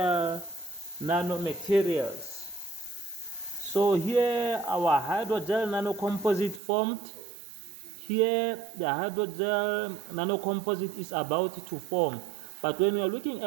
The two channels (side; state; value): left; drops out; at 6.6 s